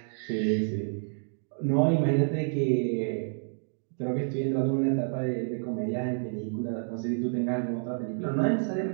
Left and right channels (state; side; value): silent; left; digital silence